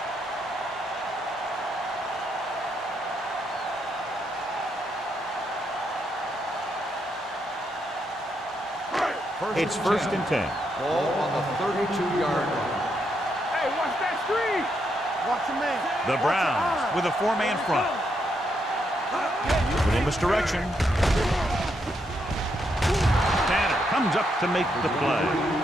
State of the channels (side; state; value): both; normal; correlation 0.79